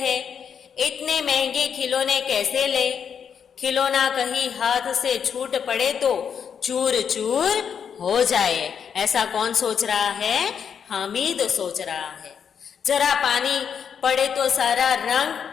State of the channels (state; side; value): quieter; right; 7.4 dB